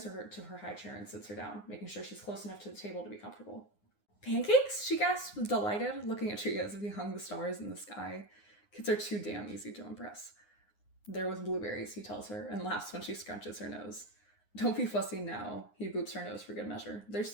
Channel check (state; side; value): late; right; 9.7 ms